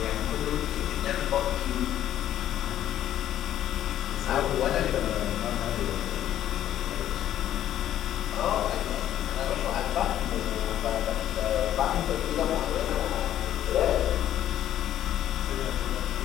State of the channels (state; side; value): quieter; right; 11.8 dB